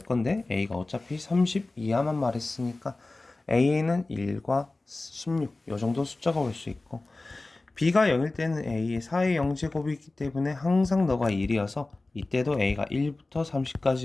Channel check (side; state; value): right; quieter; 3.1 dB